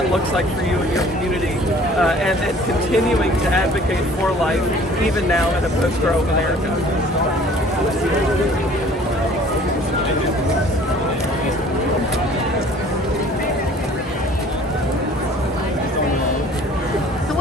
looks like for you and your community, and continuing to advocate for life, even now in a post-Roe America.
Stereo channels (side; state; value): both; normal; correlation 0.51